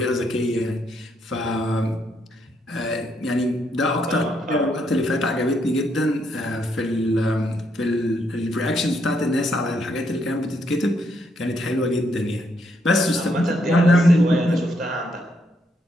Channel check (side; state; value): both; normal; correlation 0.75